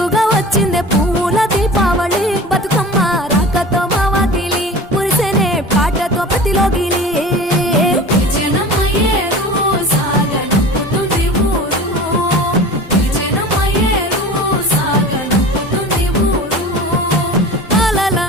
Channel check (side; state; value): both; normal; correlation 0.37